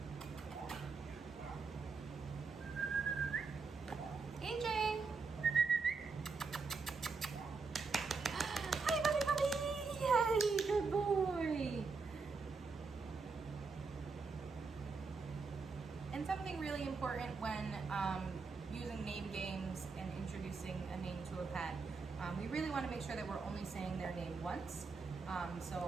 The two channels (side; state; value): left; quieter; 4.6 dB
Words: AJ! Hi, puppy puppy! Yay, good boy! And something really important when using name games and introducing a name to a pet, we really want to make sure that we're only saying their name once.